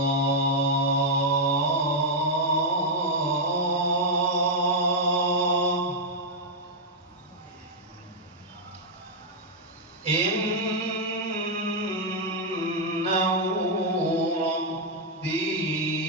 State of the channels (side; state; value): both; normal; correlation -0.02